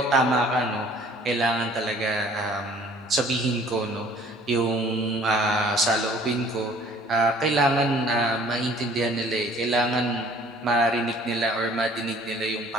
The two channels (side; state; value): both; normal; correlation 0.53